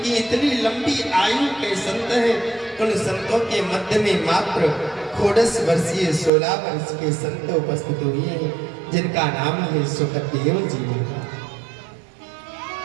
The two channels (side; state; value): left; drops out; at 6.3 s